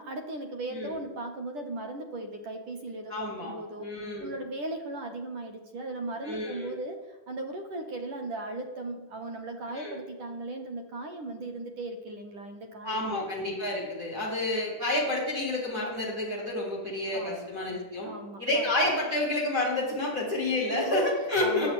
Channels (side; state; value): left; late; 10 ms